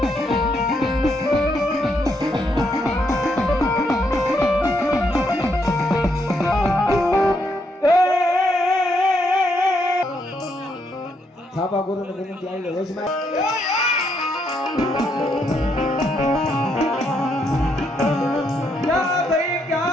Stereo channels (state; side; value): normal; both; correlation 0.76